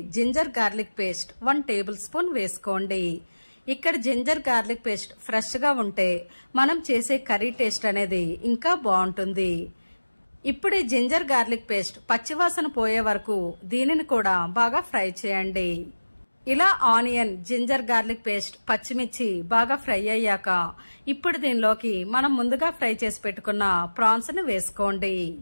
ginger garlic paste 1 tablespoon వేసుకోండి. ఇక్కడ జింజర్ గార్లిక్ పేస్ట్ ఫ్రెష్ గా ఉంటే మనం చేసే కర్రీ టేస్ట్ అనేది ఇంకా బాగుంటుంది. ఇప్పుడు ఈ జింజర్ గార్లిక్ పేస్ట్ పచ్చివాసన పోయే వరకు దీనిని కూడా బాగా ఫ్రై చేయండి. ఇలా ఆనియన్, జింజర్ గార్లిక్ పేస్ట్, పచ్చిమిర్చి బాగా ఫ్రై అయ్యాక ఇప్పుడు దీనిలోకి మనం ముందుగా ఫ్రై చేసి పెట్టుకున్న ప్రాన్స్ ని వేసుకోండి.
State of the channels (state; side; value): inverted; both; correlation -1.00